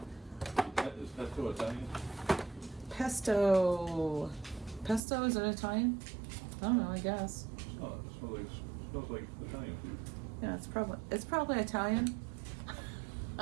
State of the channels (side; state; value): left; drops out; at 5.0 s